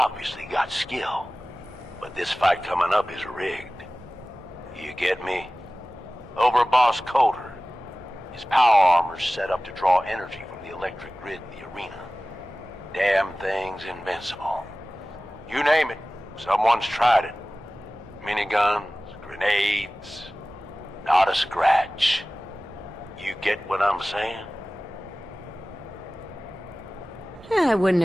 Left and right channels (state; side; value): normal; both; correlation 0.97